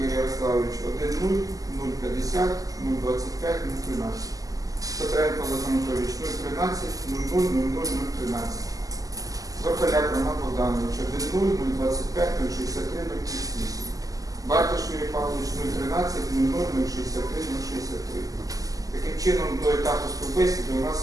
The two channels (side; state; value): left; late; 0.17 ms